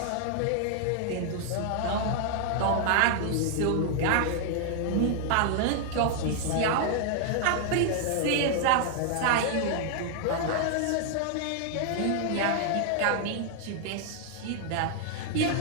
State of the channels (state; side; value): different; both; correlation 0.00